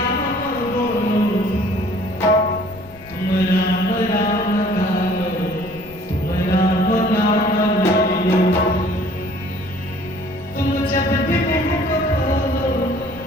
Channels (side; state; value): left; noise; rumble, 21 dB below the sound